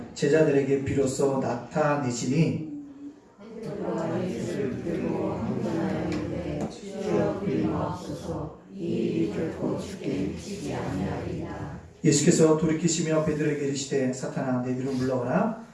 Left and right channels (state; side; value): identical; both; correlation 1.00